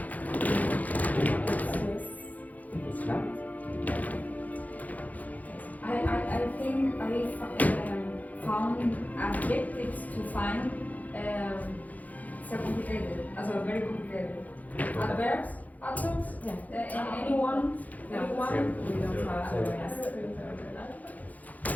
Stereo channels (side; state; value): right; late; 0.078 ms